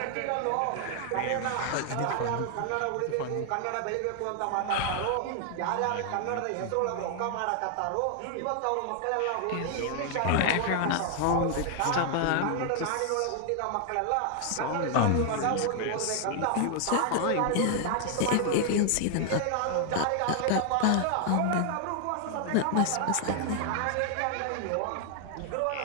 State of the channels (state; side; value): different; both; correlation 0.00